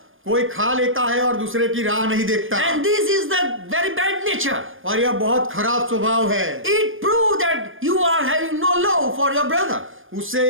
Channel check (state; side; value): late; left; 0.59 ms